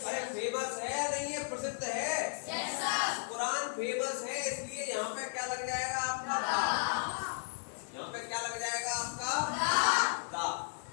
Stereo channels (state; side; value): silent; right; 55 dB below the other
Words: अरे फेमस है या नहीं है? प्रसिद्ध है। कुरान फेमस है, इसलिए यहाँ पे क्या लग जाएगा आपका? दा। यहाँ पे क्या लग जाएगा आपका? दा।